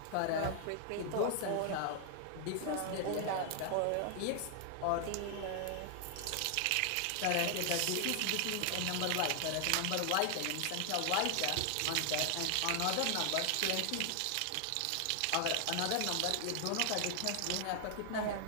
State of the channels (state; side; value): different; both; correlation 0.00